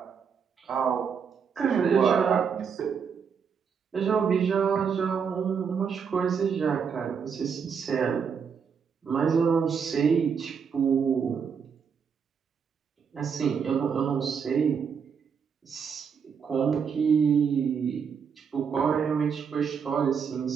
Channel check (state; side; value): quieter; left; 6.6 dB